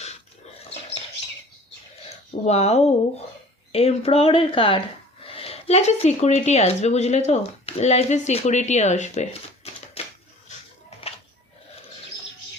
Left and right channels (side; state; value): both; normal; correlation 0.47